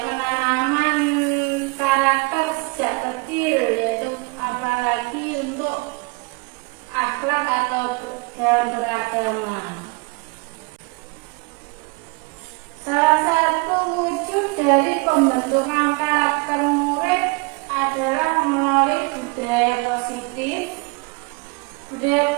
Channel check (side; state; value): left; quieter; 28.7 dB